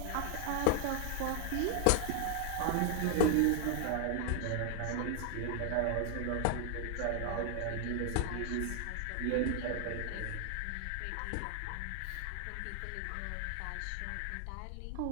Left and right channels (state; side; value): different; both; correlation 0.00